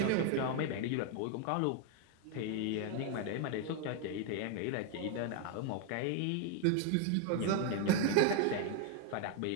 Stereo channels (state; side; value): different; both; correlation 0.01